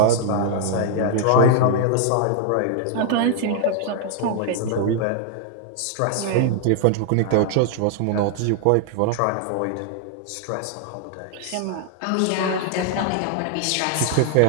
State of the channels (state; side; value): different; both; correlation 0.00